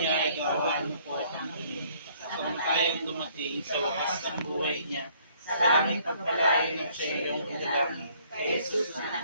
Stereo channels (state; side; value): inverted; both; correlation -0.62